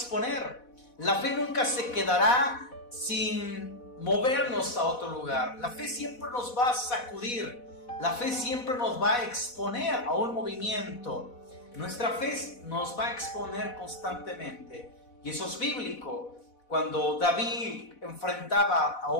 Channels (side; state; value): right; late; 4.1 ms